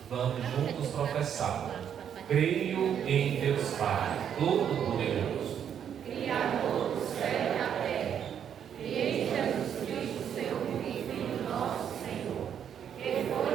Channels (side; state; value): left; quieter; 8.7 dB